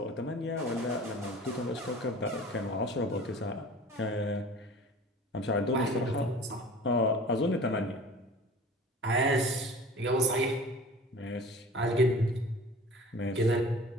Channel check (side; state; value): both; normal; correlation 0.42